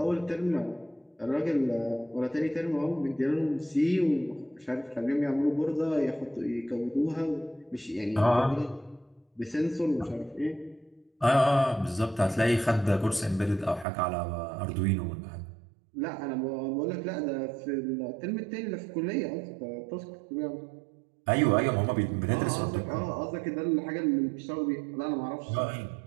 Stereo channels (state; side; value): drops out; left; at 13.9 s